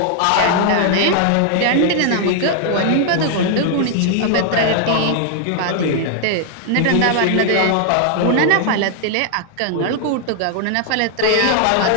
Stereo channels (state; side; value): different; both; correlation 0.00